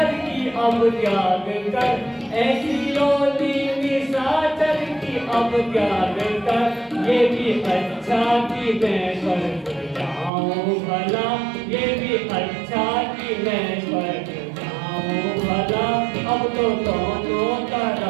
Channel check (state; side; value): drops out; left; at 10.3 s